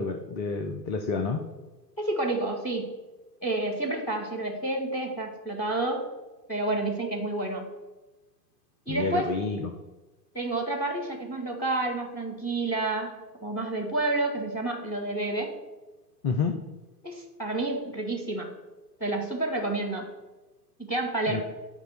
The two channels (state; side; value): late; right; 2.5 ms